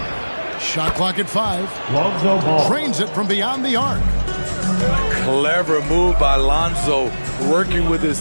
Shot clock at 5. Trains it from beyond the arc. Clever move by Lonzo, working with his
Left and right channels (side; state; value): both; inverted; correlation -1.00